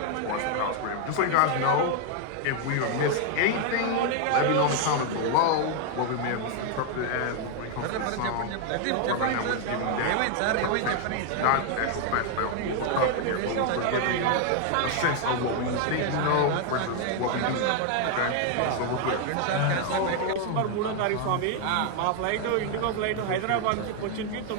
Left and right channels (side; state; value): both; different; correlation 0.01